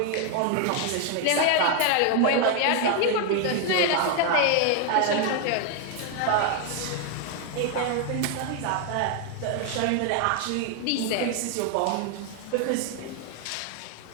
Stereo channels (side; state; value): both; different; correlation 0.01